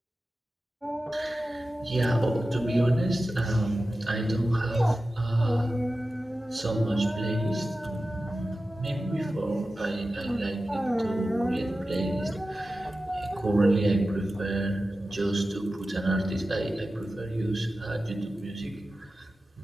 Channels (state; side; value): normal; both; correlation 0.94